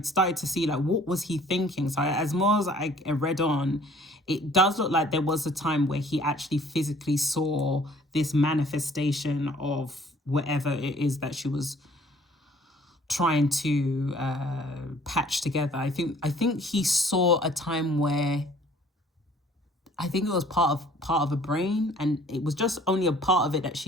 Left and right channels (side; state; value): both; normal; correlation 0.55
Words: started to see like, what was he thinking? So as more as I read on, it does look like there was a time where he actually physically saw this manifestation of whatever it is that she was trying to patch together. I think he saw a time where, I think it was part of a brain, and it was just only a part of it that